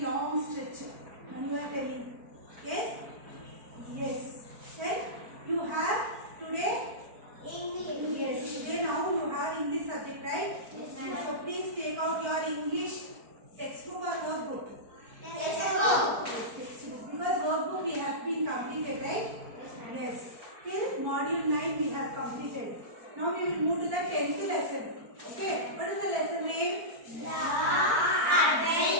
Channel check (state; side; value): late; left; 4.5 ms